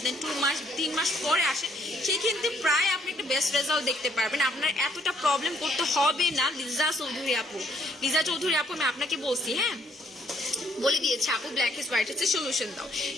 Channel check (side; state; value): both; normal; correlation 0.66